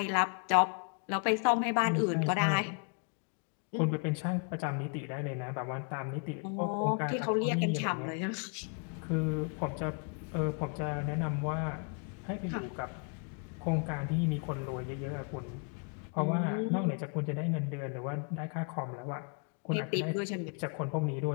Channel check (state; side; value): quieter; right; 39.7 dB